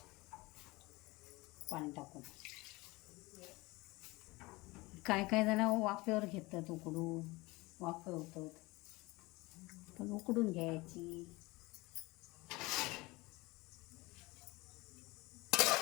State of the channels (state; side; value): quieter; right; 22.6 dB